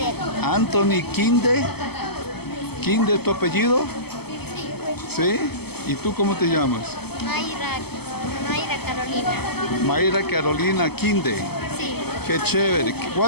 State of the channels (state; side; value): late; right; 0.96 ms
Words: Anthony Kinde. ¿Kinde tu apellido? ¿Sí? ¿Y tú cómo te llamas? Mayra Carolina. Mayra Carolina Kinde. Sí. Qué chévere.